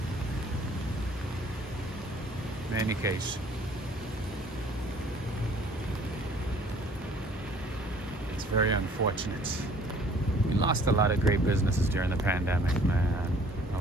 In any case, it's very unfortunate. We lost a lot of great businesses during the pandemic, man.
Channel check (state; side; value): normal; both; correlation 0.55